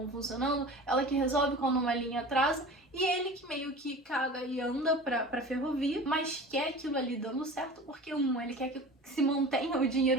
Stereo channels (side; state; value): both; normal; correlation 0.37